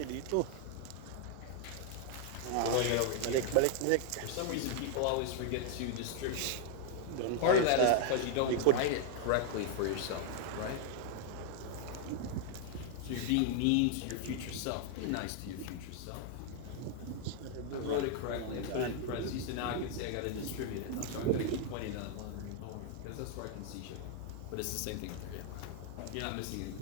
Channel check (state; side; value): different; both; correlation 0.00